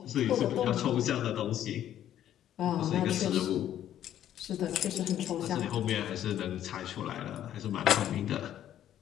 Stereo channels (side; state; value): right; quieter; 11.3 dB